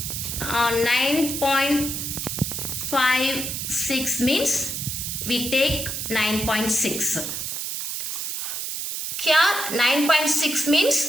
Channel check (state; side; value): noise; right; hiss, 4 dB below the sound